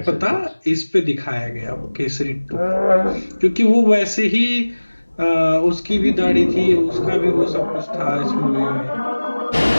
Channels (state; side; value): inverted; both; correlation -1.00